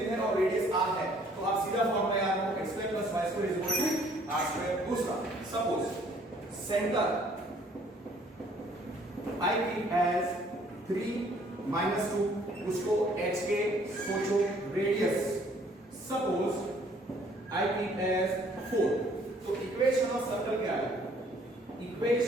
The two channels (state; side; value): normal; both; correlation 0.60